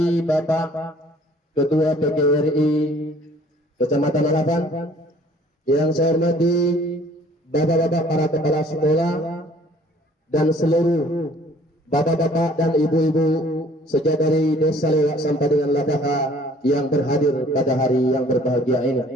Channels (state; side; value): normal; both; correlation 0.56